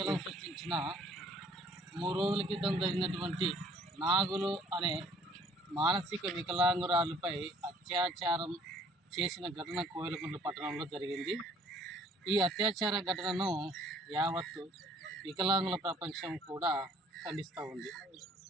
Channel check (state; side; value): normal; both; correlation 0.57